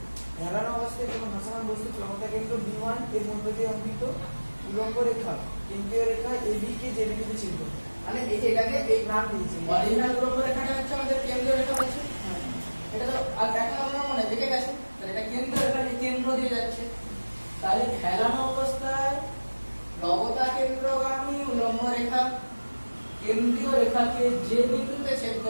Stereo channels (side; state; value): both; inverted; correlation -1.00